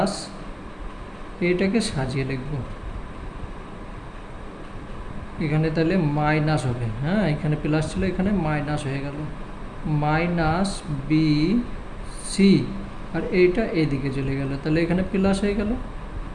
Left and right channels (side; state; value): both; identical; correlation 1.00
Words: এইটাকে সাজিয়ে লিখব, এখানে তাহলে মাইনাস হবে, হ্যাঁ, এখানে প্লাস ছিল, এখানে মাইনাস হয়ে গেল, মাইনাস বি সি, আর এইটা এইদিকে চলে গেল, তাহলে এখানে প্লাস হয়ে গেল